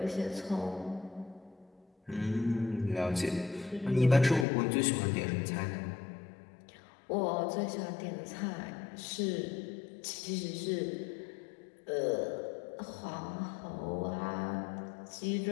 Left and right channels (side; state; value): right; drops out; at 4.5 s